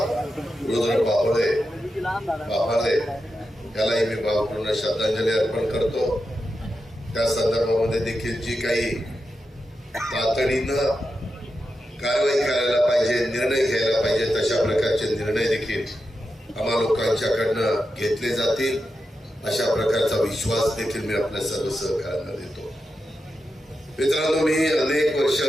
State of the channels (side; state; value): both; normal; correlation 0.89